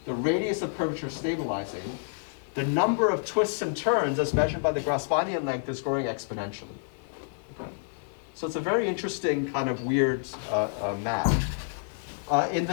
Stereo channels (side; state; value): right; silent; digital silence